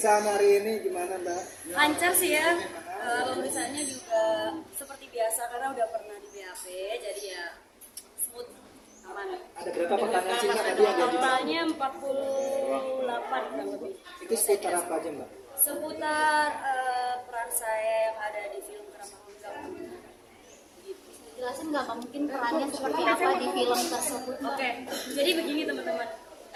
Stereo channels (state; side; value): identical; both; correlation 1.00